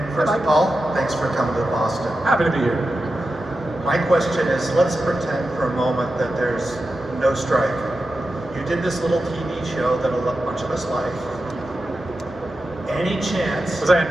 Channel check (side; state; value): both; normal; correlation 0.91